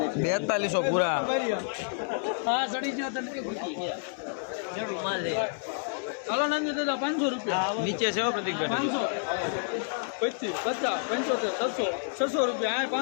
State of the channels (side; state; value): right; silent; digital silence